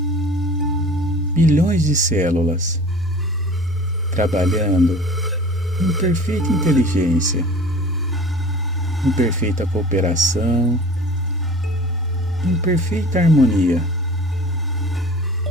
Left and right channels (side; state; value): both; normal; correlation 0.42